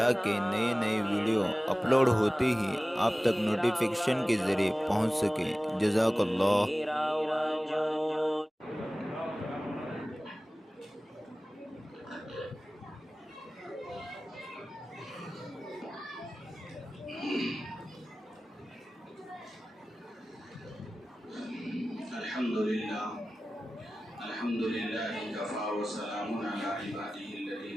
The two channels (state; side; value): normal; both; correlation 0.97